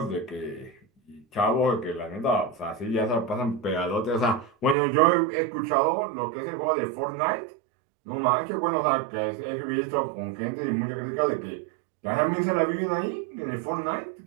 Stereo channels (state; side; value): drops out; left; at 4.8 s